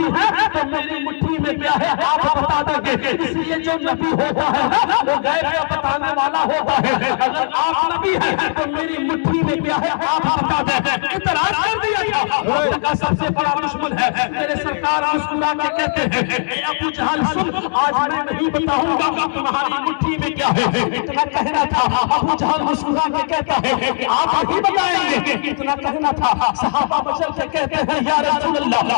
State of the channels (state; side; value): silent; right; digital silence